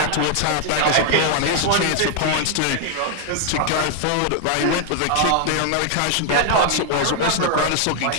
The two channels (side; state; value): both; different; correlation 0.00